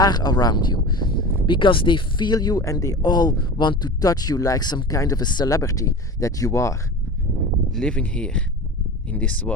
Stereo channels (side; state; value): both; normal; correlation 0.33